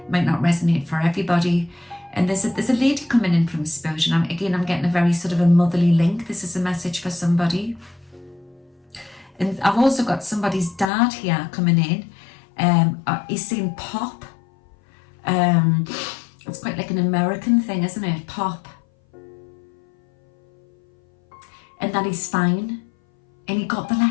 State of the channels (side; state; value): right; drops out; at 10.9 s